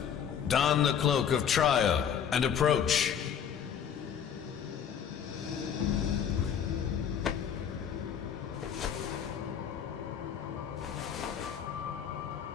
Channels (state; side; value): quieter; right; 8.1 dB